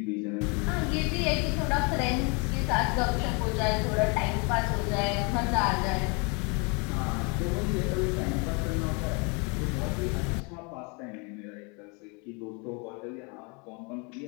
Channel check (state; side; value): quieter; right; 32.3 dB